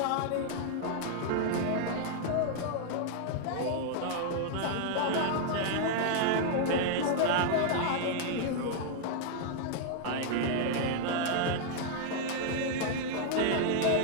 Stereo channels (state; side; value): different; both; correlation 0.00